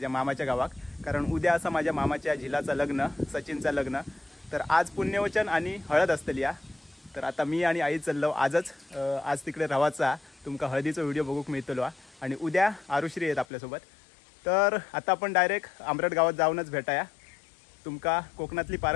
मामाच्या गावात, कारण उद्या असं माझ्या मामाच्या झिलाचं लग्न, सचिनचं लग्न. तर आज पुण्यवचन आणि हळद असतली या. तर आता मी आणि आई चाललो आज तिकडे रवाचा तुमका हळदीचा व्हिडिओ बघूक मिळतलो आणि उद्या आरुश्री आहेत आपल्यासोबत. तर आता आपण डायरेक्ट आंबरड गावात जाऊनच भेटाया. तुमका कोकणातली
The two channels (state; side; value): drops out; right; at 13.5 s